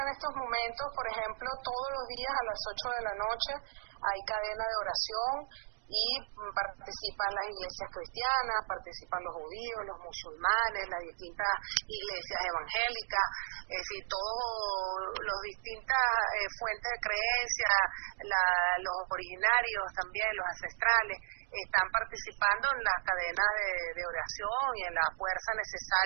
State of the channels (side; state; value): left; silent; digital silence